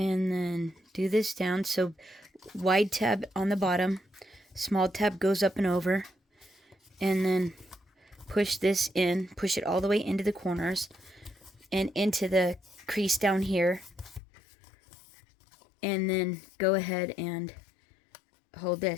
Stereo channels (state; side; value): drops out; right; at 14.2 s